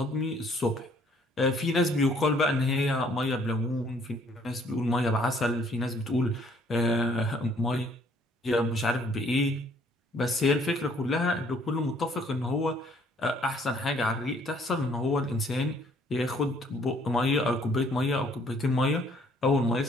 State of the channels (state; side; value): normal; both; correlation 0.62